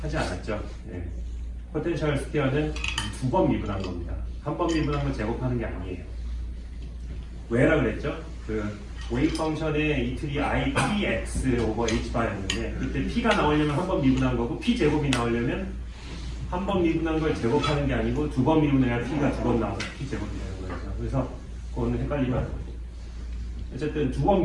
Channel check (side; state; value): both; identical; correlation 1.00